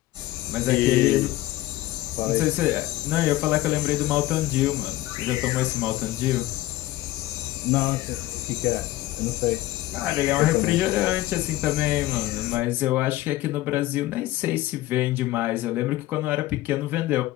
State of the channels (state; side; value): quieter; right; 16.4 dB